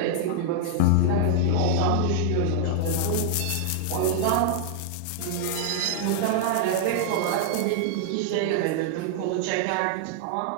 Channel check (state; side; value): different; both; correlation -0.01